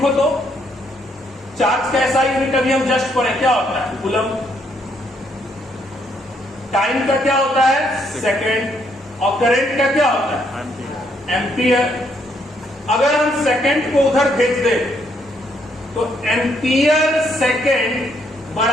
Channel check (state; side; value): normal; both; correlation 0.72